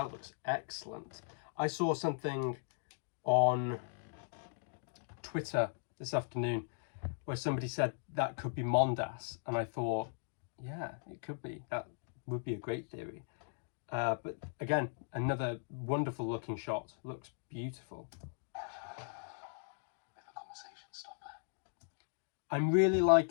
looks excellent. I saw something on Twitter this afternoon where somebody said that could be Mondas, and I thought, yeah, it could be. That would be a great theory. But again, another wonderful looking shot. Looks beautiful. Bit of a conversation stopper. I'm really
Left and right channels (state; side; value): silent; right; digital silence